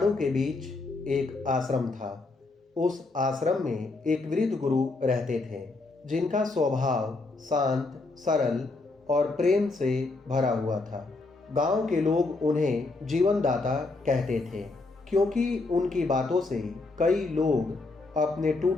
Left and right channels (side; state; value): right; quieter; 3.4 dB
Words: के बीच एक आश्रम था। उस आश्रम में एक वृद्ध गुरु रहते थे, जिनका स्वभाव शांत, सरल और प्रेम से भरा हुआ था। गांव के लोग उन्हें जीवनदाता कहते थे, क्योंकि उनकी बातों से कई लोग अपने